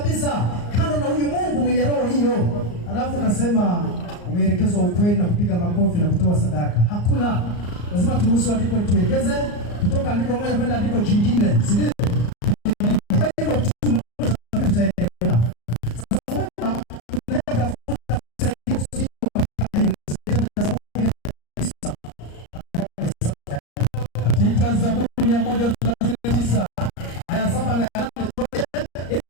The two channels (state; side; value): late; right; 34 ms